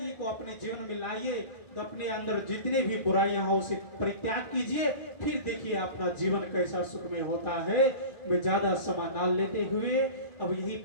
को अपने जीवन में लाइए। तो अपने अंदर जितने भी बुराइयां हो उसे परित्याग कीजिए, फिर देखिए अपना जीवन कैसा सुखमय होता है। मैं ज्यादा समय न लेते हुए अब यही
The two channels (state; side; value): late; right; 1.9 ms